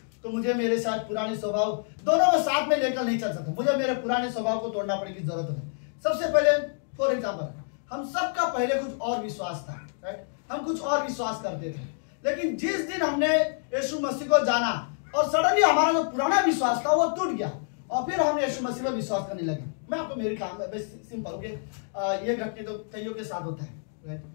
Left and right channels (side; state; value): right; silent; digital silence